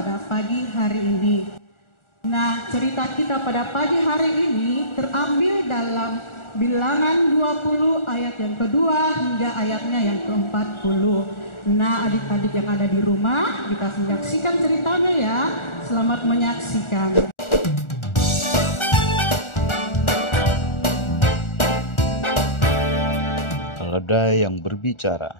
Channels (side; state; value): right; late; 1.4 ms